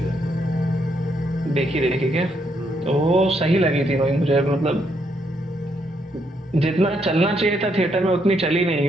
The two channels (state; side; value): normal; both; correlation 0.75